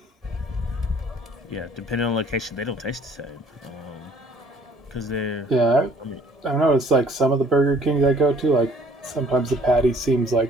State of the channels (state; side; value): normal; both; correlation 0.57